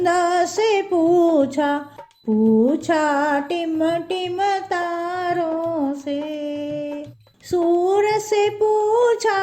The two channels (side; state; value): both; identical; correlation 1.00